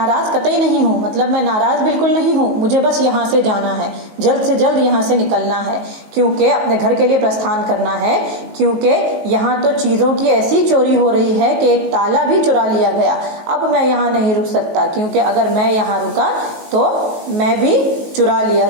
कतई नहीं हूँ, मतलब मैं नाराज बिल्कुल नहीं हूँ, मुझे बस यहाँ से जाना है, जल्द से जल्द यहाँ से निकलना है, क्योंकि अपने घर के लिए प्रस्थान करना है, क्योंकि यहाँ तो चीजों की ऐसी चोरी हो रही है कि एक ताला भी चुरा लिया गया। अब मैं यहाँ नहीं रुक सकता, क्योंकि अगर मैं यहाँ रुका तो मैं भी चुरा लिया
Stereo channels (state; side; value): late; left; 19 ms